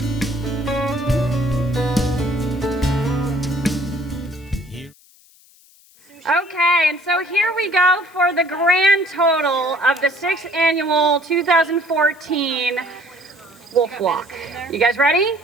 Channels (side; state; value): left; noise; hiss, 28 dB below the sound